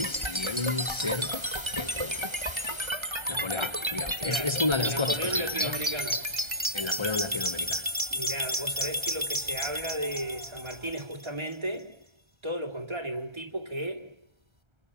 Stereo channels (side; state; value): left; late; 1.3 ms